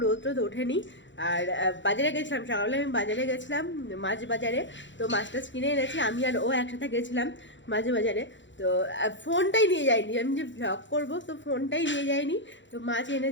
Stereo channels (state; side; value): late; right; 0.54 ms